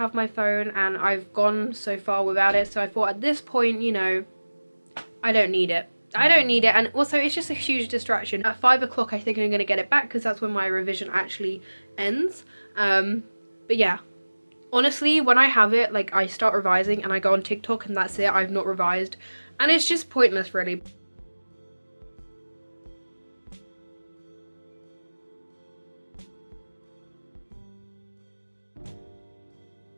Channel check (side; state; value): both; inverted; correlation -1.00